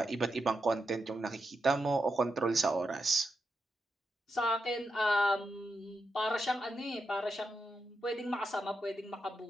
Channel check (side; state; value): both; normal; correlation 0.85